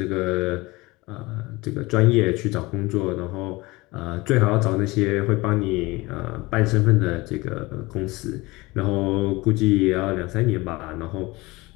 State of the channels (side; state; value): right; quieter; 22.1 dB